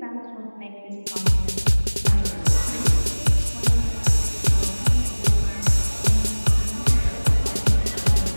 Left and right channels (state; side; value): inverted; both; correlation -1.00